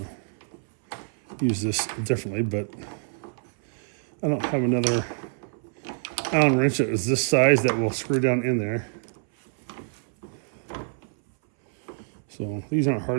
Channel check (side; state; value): left; silent; 61 dB below the other